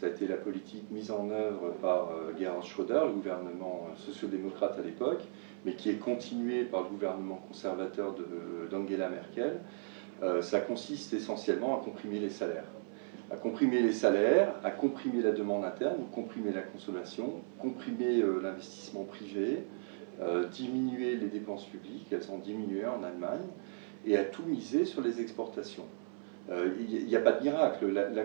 a été la politique mise en œuvre par Gerhard Schröder, le gouvernement sociodémocrate à l'époque, mais qui est continuée par le gouvernement conservateur d'Angela Merkel. Ça consiste essentiellement à comprimer les salaires. À comprimer les salaires, à comprimer la demande interne, comprimer la consommation, comprimer l'investissement privé, diminuer les dépenses publiques, elles ont diminué en Allemagne, et à tout miser sur les exportations. Il n'y a pas de miracle. La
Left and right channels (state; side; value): silent; left; 54 dB below the other